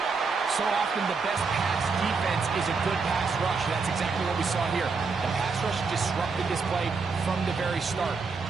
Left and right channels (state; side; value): quieter; left; 4.7 dB